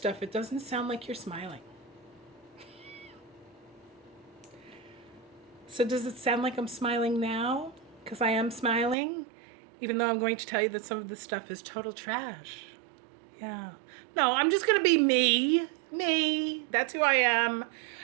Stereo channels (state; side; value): drops out; left; at 9.0 s